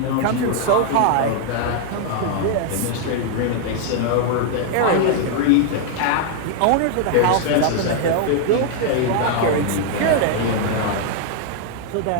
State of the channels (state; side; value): different; both; correlation 0.00